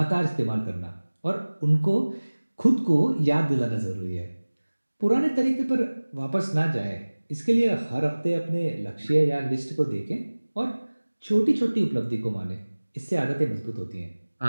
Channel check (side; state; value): both; inverted; correlation -1.00